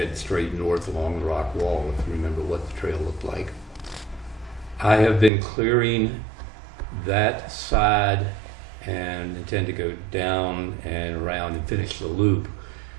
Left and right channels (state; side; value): drops out; left; at 5.3 s